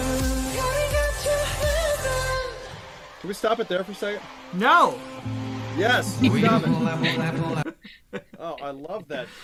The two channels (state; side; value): identical; both; correlation 1.00